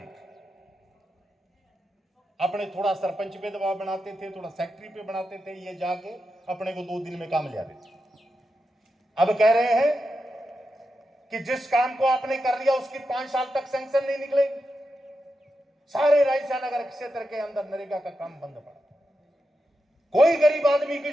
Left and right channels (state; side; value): normal; both; correlation 0.88